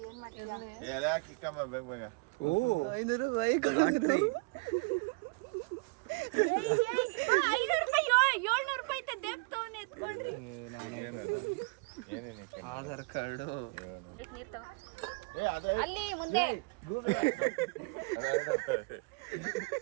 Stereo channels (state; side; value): quieter; left; 30.2 dB